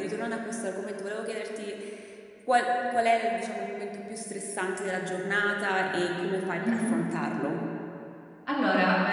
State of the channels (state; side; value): identical; both; correlation 1.00